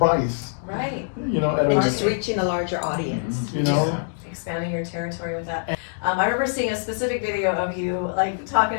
Right. You know, And just reaching a larger audience. You know, expanding your territory with that. I remember seeing a specific video of you like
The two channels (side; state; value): right; silent; digital silence